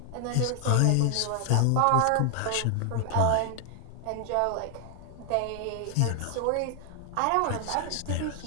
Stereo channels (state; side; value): different; both; correlation 0.00